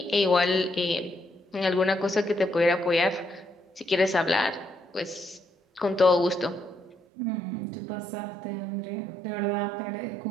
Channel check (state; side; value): drops out; left; at 7.0 s